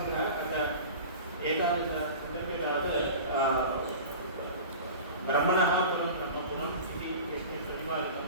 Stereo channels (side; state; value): both; inverted; correlation -0.36